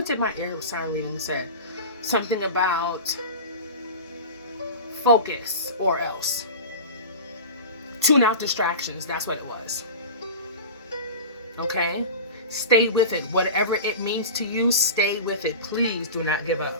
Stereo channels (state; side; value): inverted; both; correlation -0.31